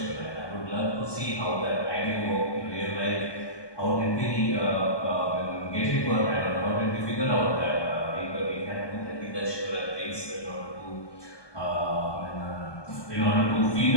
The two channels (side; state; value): right; late; 1.2 ms